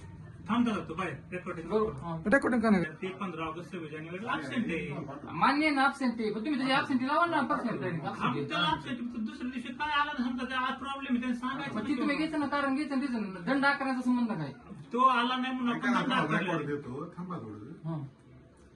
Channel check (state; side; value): identical; both; correlation 1.00